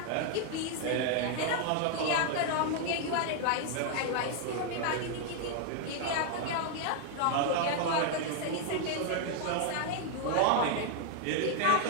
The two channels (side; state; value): both; different; correlation 0.00